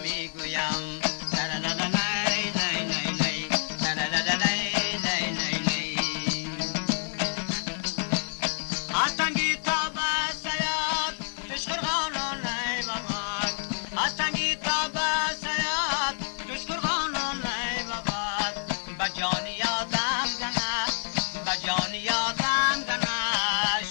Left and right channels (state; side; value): silent; right; 59 dB below the other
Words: میگویم هستنگی تا بسیاد دشکرغانان ای بابا هستنگی تا بسیاد دشکرغانان ای بابا بجان یادم گنه بجان یادم گنه